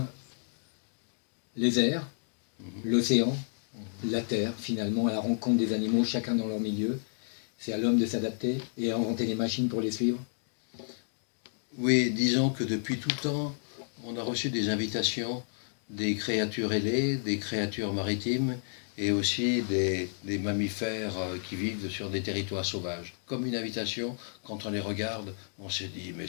les airs, l'océan, la terre, finalement, à la rencontre des animaux, chacun dans leur milieu. C'est à l'homme de s'adapter et à inventer les machines pour les suivre. Oui, disons que depuis tout temps, on a reçu des invitations des créatures ailées, des créatures maritimes et aussi des mammifères qui vivent sur des territoires sauvages. Comme une invitation, quand on les regarde, on se dit mais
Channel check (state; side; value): silent; right; digital silence